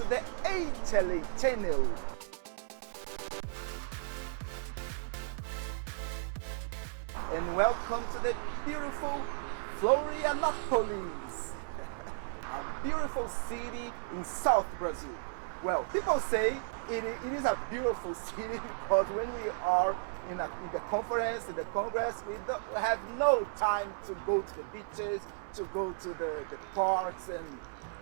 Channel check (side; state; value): left; silent; 55 dB below the other